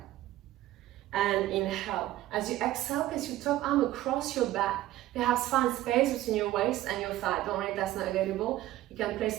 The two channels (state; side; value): quieter; left; 15.0 dB